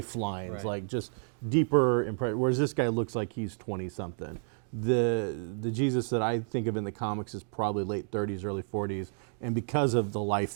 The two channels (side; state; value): left; silent; 57 dB below the other